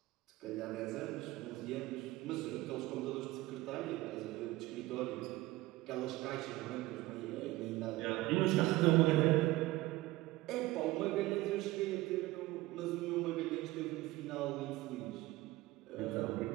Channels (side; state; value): left; quieter; 18.5 dB